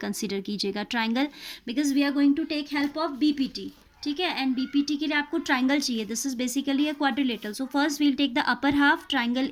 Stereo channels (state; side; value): identical; both; correlation 1.00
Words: कीजिएगा, triangle, because we are going to take help of BPT. ठीक है, and BPT के लिए आपको ट्राइंगल चाहिए. This is basically a quadrilateral. So first we will take the upper half triangle